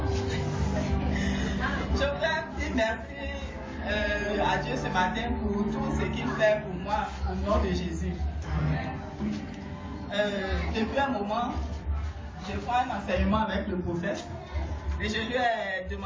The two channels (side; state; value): both; identical; correlation 1.00